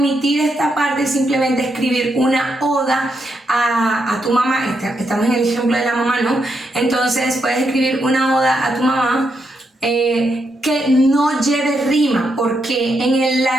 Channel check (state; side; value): normal; both; correlation 0.81